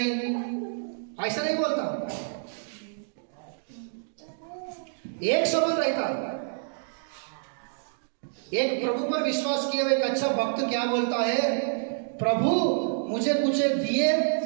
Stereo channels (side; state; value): left; silent; digital silence